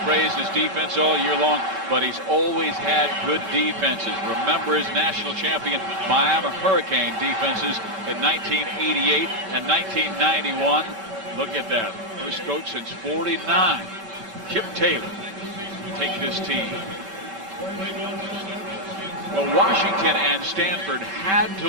praised his defense all year long, but he's always had good defenses. Remember his national champion Miami Hurricane defenses in 1988 and 1991. Look at that. First coach since 49. Chip Taylor taking his team. Well, Washington and Stanford had to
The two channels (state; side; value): late; left; 5.2 ms